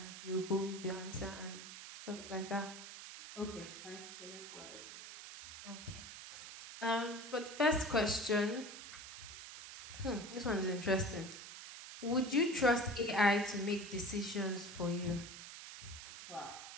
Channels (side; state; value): right; noise; hiss, 11 dB below the sound